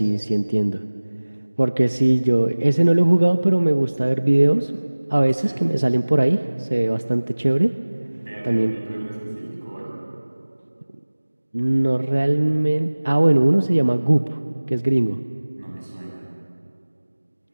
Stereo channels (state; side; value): inverted; both; correlation -1.00